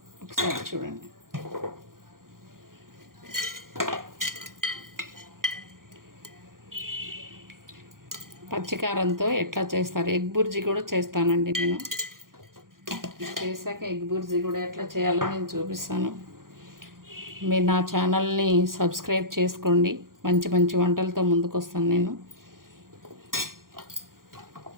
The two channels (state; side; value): late; left; 0.91 ms